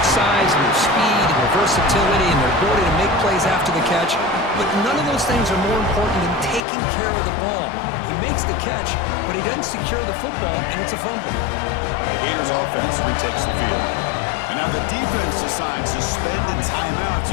size and their speed and their versatility and their ability to make plays after the catch, but none of those things are more important than taking care of the ball. He makes the catch, but he doesn't secure the football, and it's a fumble. The Gators offense retakes the field. And now the defense decides to spend a timeout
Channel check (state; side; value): drops out; right; at 6.7 s